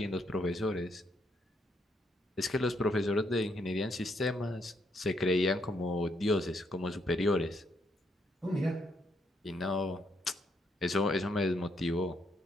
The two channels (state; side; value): normal; both; correlation 0.75